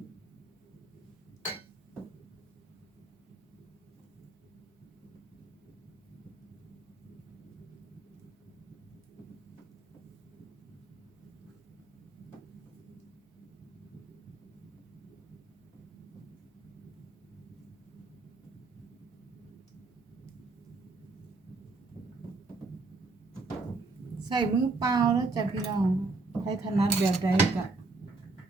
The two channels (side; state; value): left; quieter; 3.5 dB